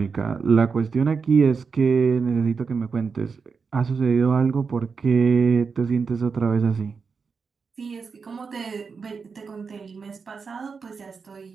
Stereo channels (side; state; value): left; quieter; 5.3 dB